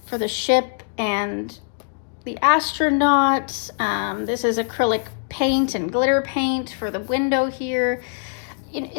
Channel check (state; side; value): silent; right; digital silence